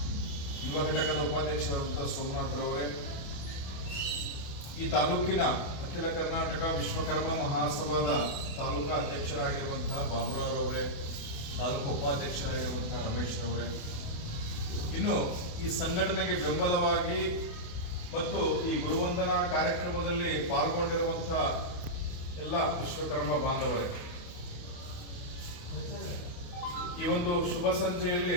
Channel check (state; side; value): late; right; 28 ms